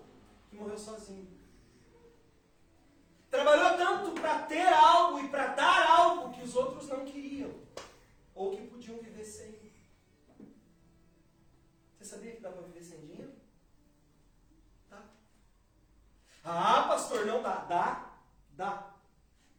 que morreu sozinho. Trabalhou tanto para ter algo e para dar algo que os outros não queriam. Ou que podiam viver sem. Você sabia que dá para viver sem dinheiro? Dá. Ah, pastor, não dá. Dá.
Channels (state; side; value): identical; both; correlation 1.00